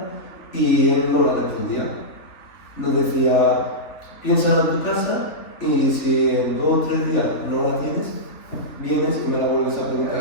y él no la respondía. Nos decía, piénsala en tu casa y si en 2 o 3 días no la tienes, vienes y me la vuelves a preguntar.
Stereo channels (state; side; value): late; right; 3.4 ms